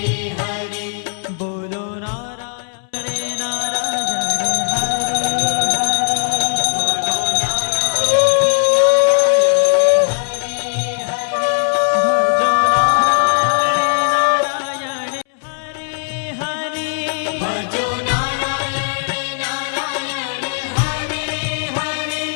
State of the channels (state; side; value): silent; right; 65 dB below the other